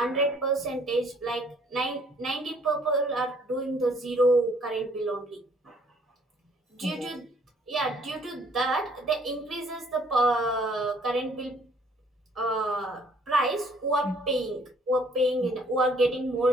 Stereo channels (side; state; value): both; normal; correlation 0.61